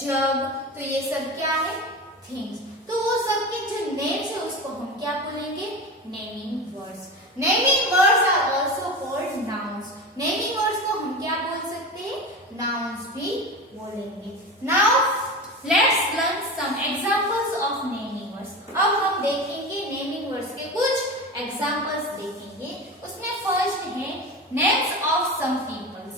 jug. तो ये सब क्या है? Things. तो वो सब के जो names है उसको हम क्या बोलेंगे? Naming words. Naming words are also called nouns. Naming words को हम क्या बोल सकते हैं? नाउन्स भी बोलेंगे. Now let's learn some examples of naming words. अब हम देखेंगे नेमिंग वर्ड्स के कुछ एग्जांपल्स देखेंगे. उसमें फर्स्ट है names of some peoples.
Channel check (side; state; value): both; normal; correlation 0.27